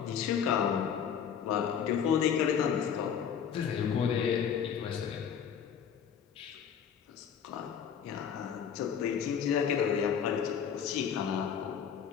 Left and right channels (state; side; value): quieter; right; 7.8 dB